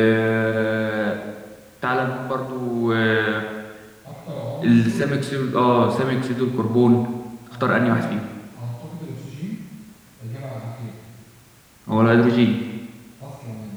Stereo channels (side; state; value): both; identical; correlation 1.00